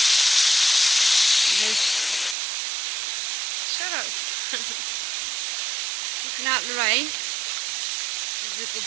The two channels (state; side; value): drops out; left; at 2.4 s